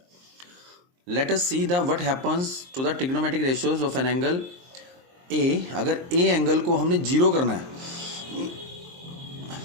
Let us see the what happens to the trigonometric ratios of an angle A. अगर ए एंगल को हमने 0 करना है,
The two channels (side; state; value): left; late; 23 ms